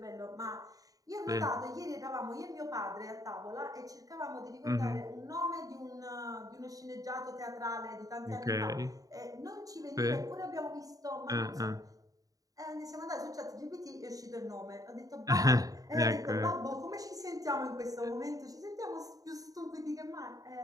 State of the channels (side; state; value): left; late; 0.17 ms